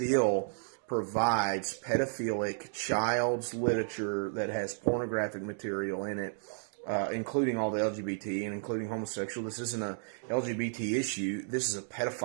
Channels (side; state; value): left; silent; digital silence